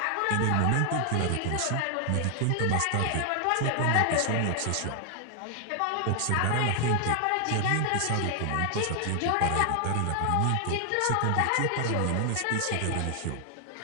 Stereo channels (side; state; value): both; different; correlation 0.00